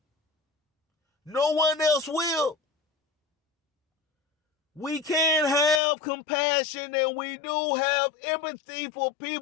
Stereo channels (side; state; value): right; drops out; at 5.8 s